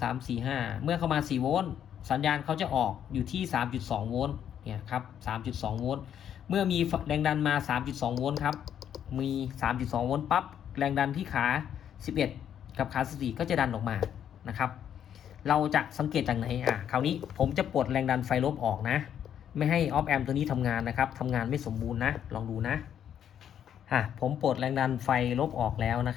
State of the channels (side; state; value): right; quieter; 9.4 dB